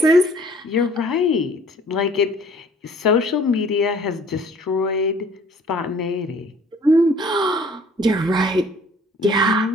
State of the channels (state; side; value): normal; both; correlation 0.54